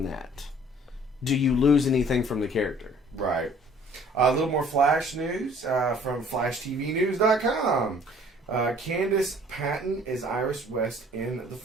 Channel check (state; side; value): normal; both; correlation 0.54